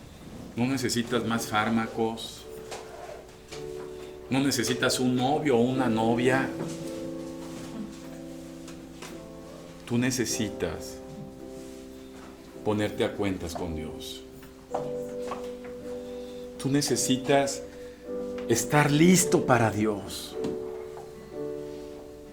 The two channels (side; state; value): both; identical; correlation 1.00